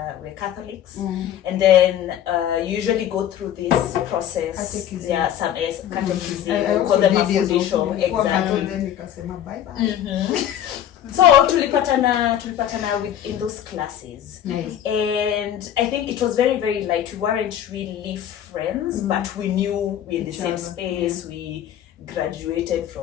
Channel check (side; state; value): right; quieter; 10.7 dB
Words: Catholics, and then you usually go through this process. Catechism. Some catechism. I Call them a did fundisho. Exactly. Then nikasema bye bye. So tulipatana in those classes. Nice. And I think it was very, very light. We weren't really friends, but we knew we're in the Each same other. space. We graduated